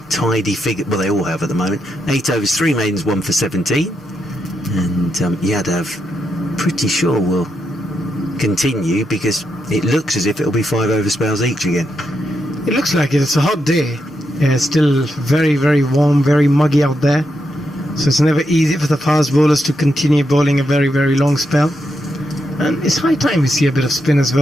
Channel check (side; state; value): both; normal; correlation 0.83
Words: tidy figure, well, they all have at the moment. 8 overs, 3 maidens, 1 for 17, and Yadav pretty sure will continue, because it looks as if it'll be 5 over spells each again. It looks like it. It's a hot day. It's still very, very warm, very muggy out there. So it's never easy for the fast bowlers to continue bowling a very, very long spell. And it's high time we see a bit of spin as